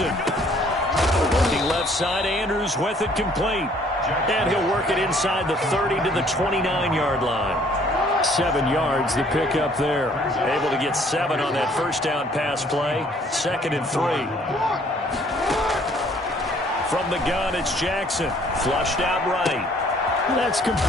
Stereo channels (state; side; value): normal; both; correlation 0.60